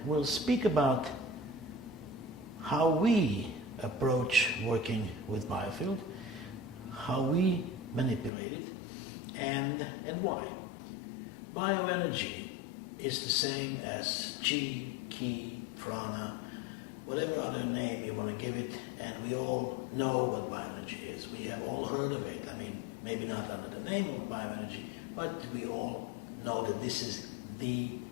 we'll speak about how we approach working with Biofield, how we manipulate it, and why. Bioenergy is the same as chi, ki, prana, whatever other name you want to give it, and we all know what bioenergy is. We have all heard of it. I mean, maybe not under the name of bioenergy, but we all know that this is the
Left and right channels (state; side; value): drops out; right; at 8.3 s